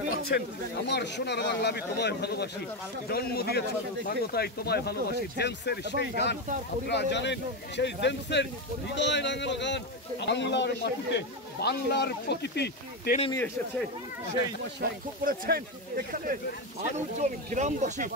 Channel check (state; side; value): normal; both; correlation 0.11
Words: পাচ্ছেন আমার সোনার বাংলা আমি তোমায় ভালোবাসি, জন্ম দিয়েছ বাংলায় তোমায় ভালোবাসি, জেমসের সেই গান আপনারা জানেন, সেই জেমসের হৃদয় রাঙানো গান বাংলার মাটিতে বাংলার প্রকৃতি টেনে নিয়ে এসেছে। সেই লক্ষ্য করেছেন এখানে মানুষজন, গ্রামবাসী